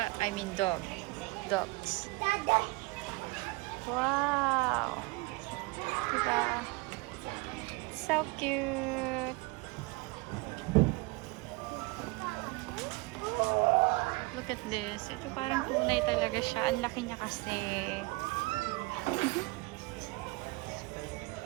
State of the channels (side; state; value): left; quieter; 25.2 dB